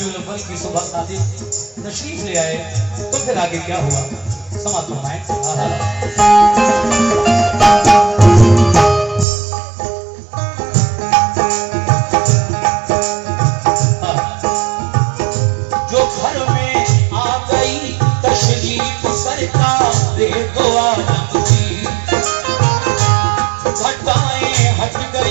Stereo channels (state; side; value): drops out; left; at 9.2 s